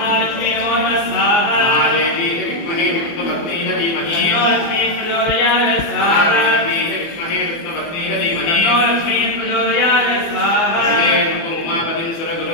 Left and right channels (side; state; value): right; late; 24 ms